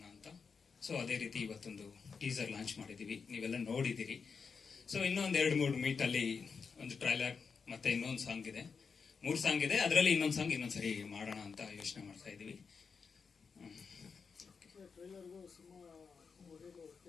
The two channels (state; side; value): quieter; right; 5.5 dB